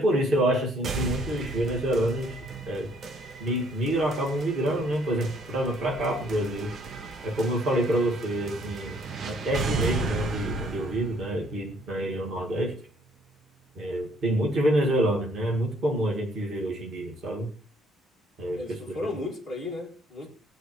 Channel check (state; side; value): normal; both; correlation 0.63